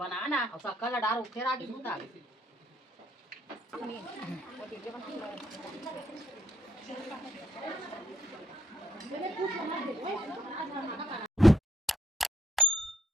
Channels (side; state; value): both; normal; correlation 0.69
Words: और शक्कर ला डालो फिर आगे दूध आगे